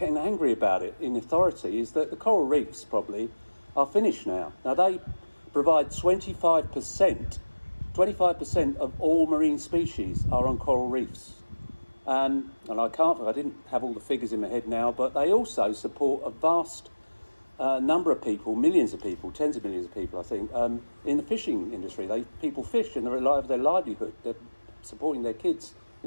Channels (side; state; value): both; inverted; correlation -1.00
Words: angry about it in authority, is that the coral reefs probably are finished now. Now they provide 25% of all marine species are on coral reefs. And I didn't have all the figures in my head now, but they also support a vast number of people, millions of people, tens of millions of people, I think, in the fishing industry. People fish and they rely on their livelihood. They're supporting their kids